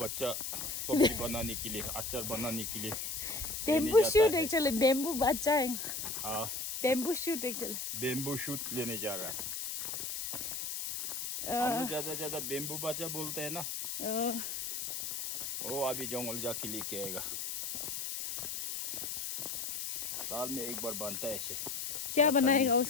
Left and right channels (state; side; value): noise; left; hiss, 3 dB below the sound